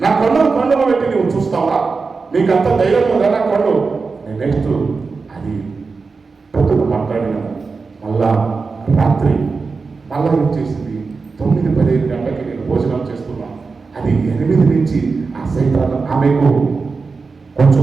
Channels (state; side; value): quieter; left; 4.5 dB